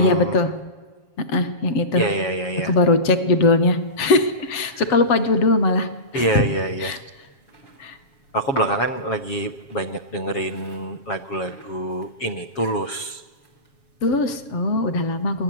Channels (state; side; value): late; right; 7.3 ms